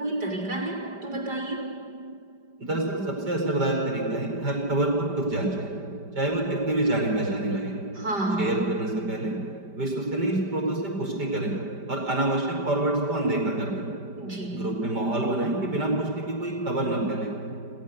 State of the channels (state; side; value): late; left; 5.1 ms